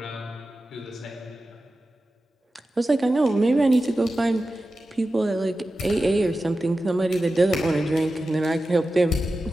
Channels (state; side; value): normal; both; correlation 0.93